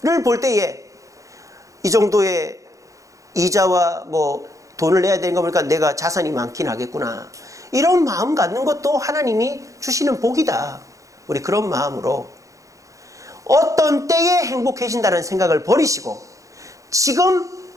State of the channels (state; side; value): late; left; 0.16 ms